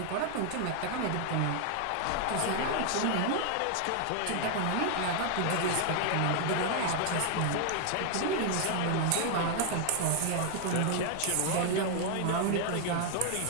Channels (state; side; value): different; both; correlation 0.00